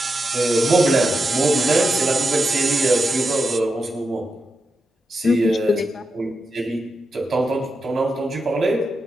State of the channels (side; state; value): both; normal; correlation 0.88